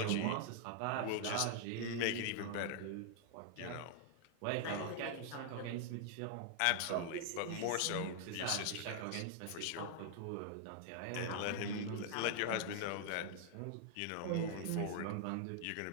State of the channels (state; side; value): different; both; correlation 0.00